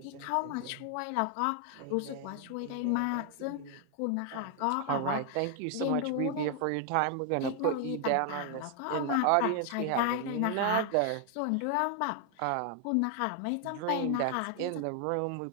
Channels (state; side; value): different; both; correlation 0.00